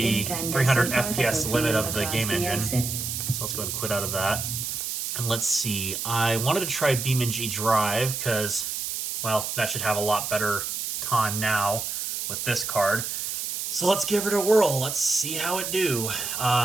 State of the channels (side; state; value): right; noise; hiss, 3 dB below the sound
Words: 300 FPS limit of the game engine. So let's go ahead and quit out of that. And let's see. I wanted to try EVGA Drive because, well, that should have a lot better time now with this card. So let's give it a whirl. Let's see how it do.